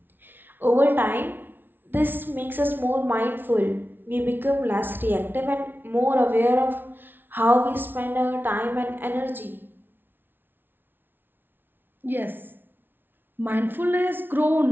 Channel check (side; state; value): left; late; 0.098 ms